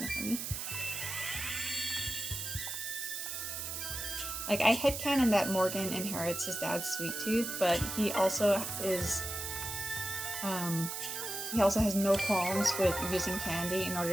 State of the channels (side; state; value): right; noise; hiss, 5 dB below the sound